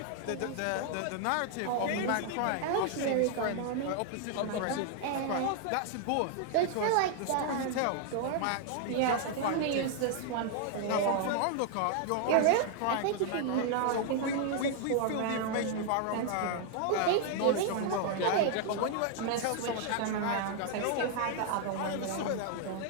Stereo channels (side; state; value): both; different; correlation 0.00